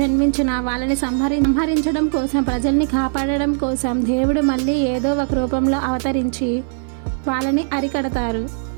వాళ్ళని సంహరించడం కోసం, ప్రజల్ని కాపాడడం కోసం దేవుడు మళ్ళీ ఏదో ఒక రూపంలో అవతరించి వాళ్ళని అరికడతారు.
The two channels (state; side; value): silent; left; 59 dB below the other